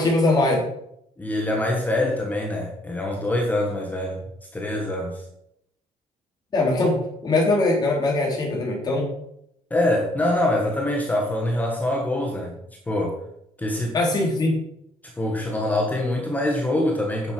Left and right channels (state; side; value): normal; both; correlation 0.67